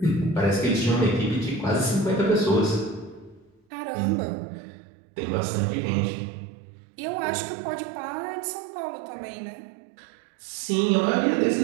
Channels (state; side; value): drops out; left; at 3.6 s